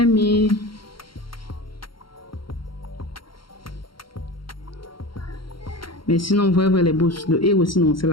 mis. Mais sinon, vous voyez les boss, le héros sinon, c'est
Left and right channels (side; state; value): right; late; 0.73 ms